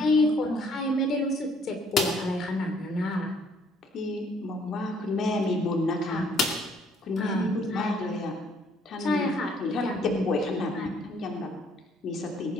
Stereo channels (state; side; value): normal; both; correlation 0.63